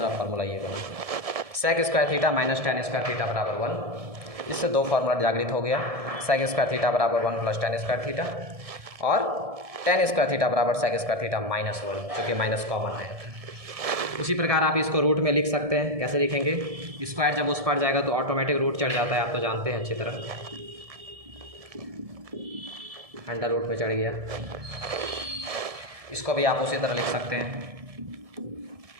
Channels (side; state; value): left; late; 1.7 ms